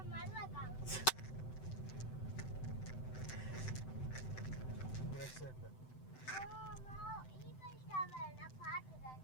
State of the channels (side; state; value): right; late; 7.8 ms